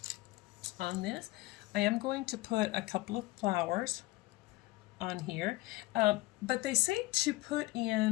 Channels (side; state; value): right; quieter; 19.7 dB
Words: on this. I am going to put a couple of flowers on here, but they say to put